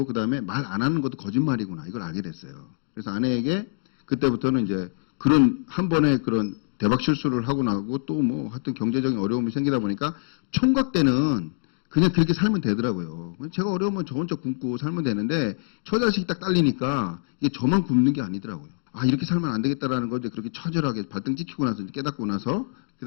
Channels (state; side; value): silent; right; digital silence